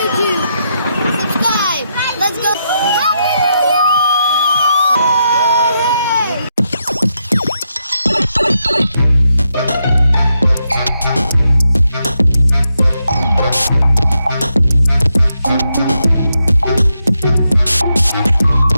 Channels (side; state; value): both; inverted; correlation -0.83